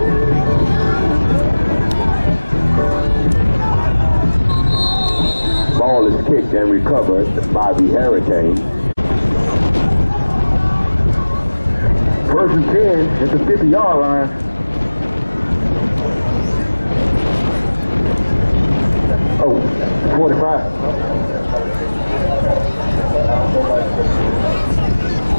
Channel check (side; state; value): both; inverted; correlation -1.00